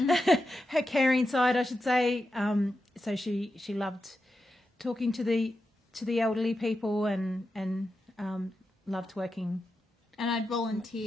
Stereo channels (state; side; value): normal; both; correlation 0.89